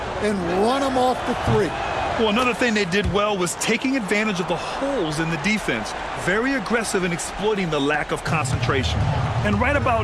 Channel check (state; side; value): identical; both; correlation 1.00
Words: and run them off the 3. Well, another thing they did well was taking advantage of the holes in the defense. Very aggressive in exploiting the lack of concentration. And right